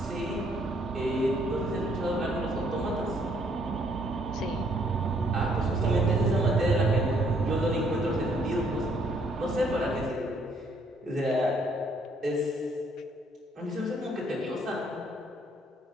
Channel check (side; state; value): both; normal; correlation 0.67